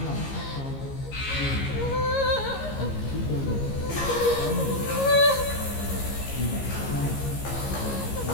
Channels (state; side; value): late; right; 15 ms